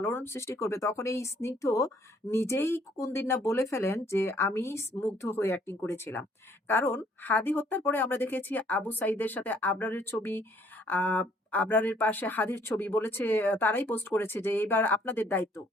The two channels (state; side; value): normal; both; correlation 0.63